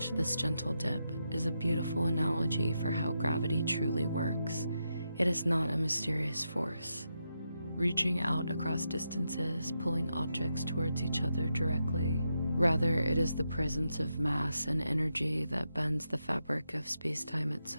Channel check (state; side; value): inverted; both; correlation -0.85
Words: this gentle dip, is a beautiful analogy for how gravity truly works. It is not a mysterious force, reaching out across distances, pulling objects towards each other directly. Rather, it is the presence of mass and energy that bends the fabric of space-time